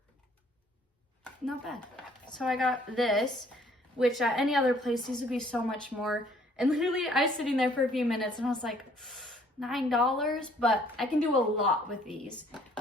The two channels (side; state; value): both; normal; correlation 0.60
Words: not bad. So I got this, which at any other place, these would be so much more. And literally I was sitting there for a few minutes and I was like, $9, but I can do a lot with these.